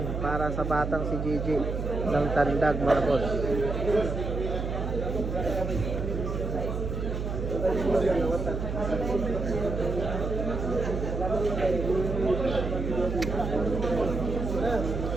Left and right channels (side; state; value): right; noise; hum, 3 dB below the sound